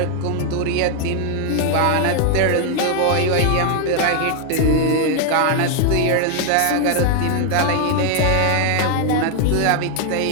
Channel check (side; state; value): both; different; correlation 0.00